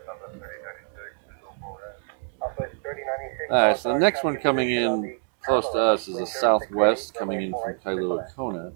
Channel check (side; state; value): left; silent; 55 dB below the other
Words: Alright, so the next one coming in close to us is a Southwest coming in from Kailua Kona.